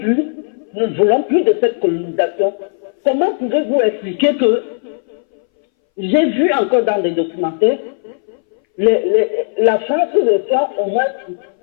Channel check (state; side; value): silent; right; 64 dB below the other